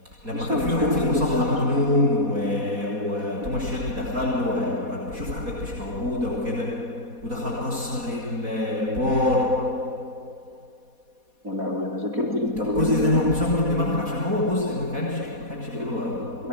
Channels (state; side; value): late; left; 4.1 ms